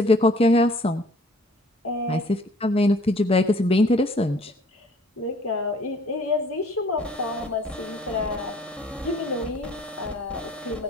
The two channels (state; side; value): normal; both; correlation 0.55